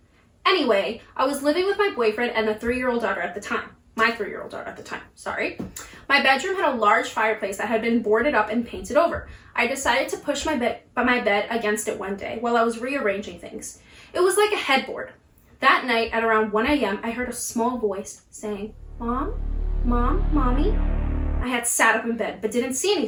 Anyway, I was living with my boyfriend and the 3-year-old daughter at the time. My 3-year-old daughter at the time, sorry. My bedroom had a large fireplace that had been boarded up and painted over. I decided to push my bed against it one day while I was rearranging things. It was like a headboard. That night at around 1 a.m., I heard a small voice saying, Mom? Mom? Mommy? I had sat up in bed but didn't see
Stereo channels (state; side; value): identical; both; correlation 1.00